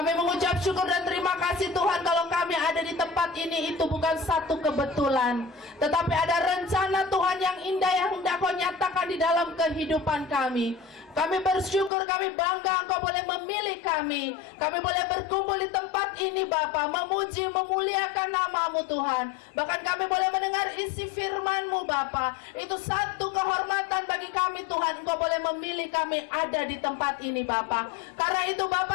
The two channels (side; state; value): right; drops out; at 11.9 s